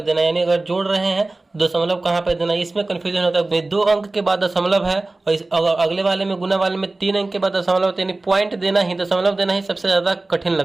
देना है, यानी अगर जोड़ रहे हैं दशमलव कहाँ पे देना है, इसमें कंफ्यूजन होता है। 2 अंक के बाद दशमलव है और इस अगले वाले में, गुना वाले में 3 अंक के बाद दशमलव होता है, यानी पॉइंट देना ही, दशमलव देना ही सबसे ज्यादा कठिन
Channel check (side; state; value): left; quieter; 3.1 dB